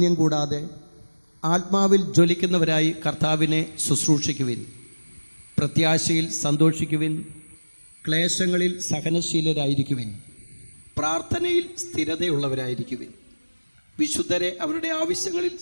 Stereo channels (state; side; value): inverted; both; correlation -1.00